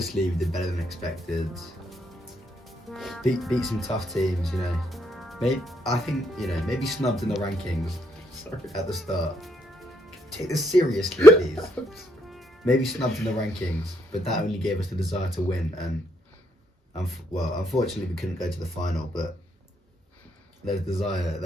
we did better than expected. Beat some tough teams, you know. I think, you know, maybe snubbed in the rankings at the start. Take this seriously, please. Maybe snubbed in the rankings, but that only gave us the desire to win. And well, unfortunately, we couldn't go to the final. But there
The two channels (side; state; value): both; normal; correlation 0.75